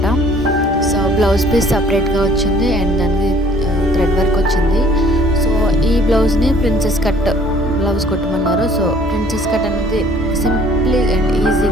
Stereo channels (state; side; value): normal; both; correlation 0.56